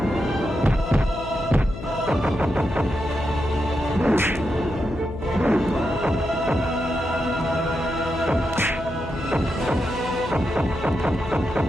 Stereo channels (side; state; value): left; noise; hum, 10 dB below the sound